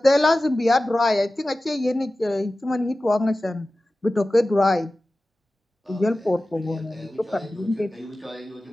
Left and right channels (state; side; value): normal; both; correlation 0.96